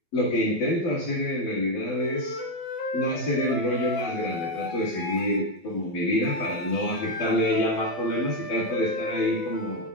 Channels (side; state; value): right; late; 12 ms